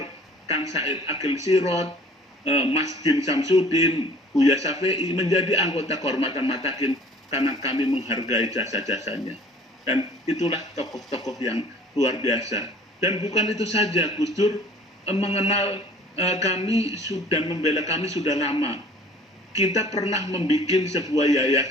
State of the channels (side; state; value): both; normal; correlation 0.51